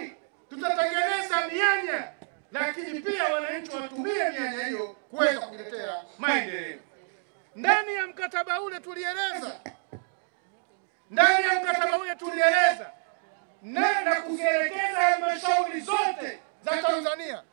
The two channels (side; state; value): left; silent; 59 dB below the other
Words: tutatengeneza mianya, lakini pia wananchi watumie mianya hiyo kuweza kuletea maendeleo. Ndani ya mkataba ule tulieleza na kuzielekeza halmashauri zote za Tanzania